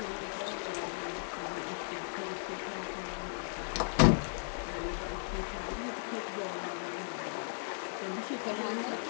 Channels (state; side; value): silent; right; 54 dB below the other